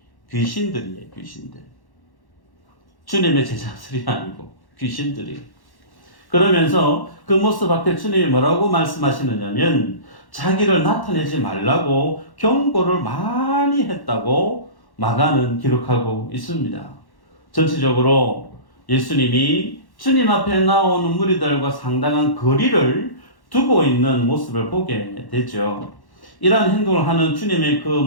귀신들이에요. 귀신들. 주님의 제자들이 아니고 귀신들이. 그러면서 그 모습 앞에 주님이 뭐라고 말씀하시느냐면 자기를 나타내지 말라고 경고를 많이 했다고 마가는 기록하고 있습니다. 전체적으로 예수님이 주님 앞에 나오는 무리들과 상당한 거리를 두고 있는 모습을 보게 되죠. 이러한 행동을 하는 주님의 그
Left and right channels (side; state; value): right; late; 1.1 ms